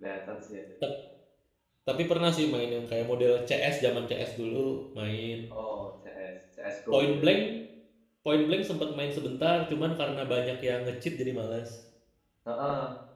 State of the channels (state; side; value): identical; both; correlation 1.00